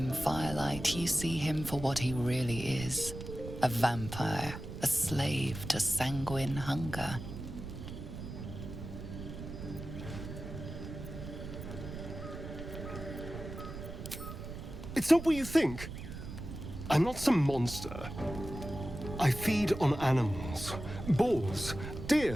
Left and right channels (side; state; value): right; noise; rumble, 9 dB below the sound